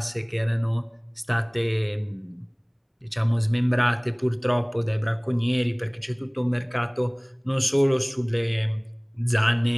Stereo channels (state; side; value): identical; both; correlation 1.00